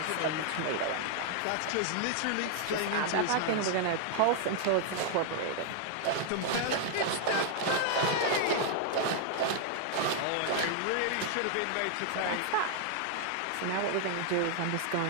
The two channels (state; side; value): different; both; correlation 0.00